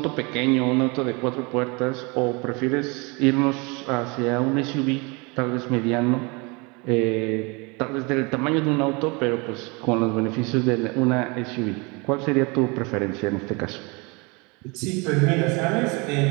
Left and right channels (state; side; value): quieter; left; 28.5 dB